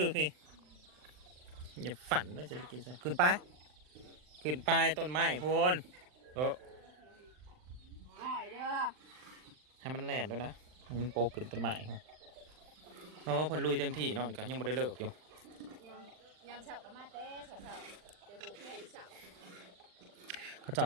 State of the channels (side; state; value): left; late; 39 ms